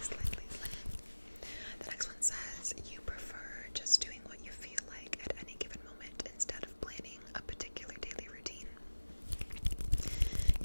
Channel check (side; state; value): both; inverted; correlation -1.00